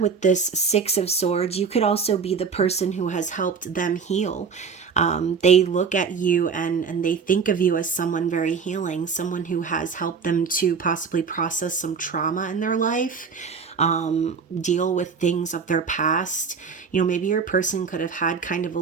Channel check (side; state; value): left; quieter; 5.7 dB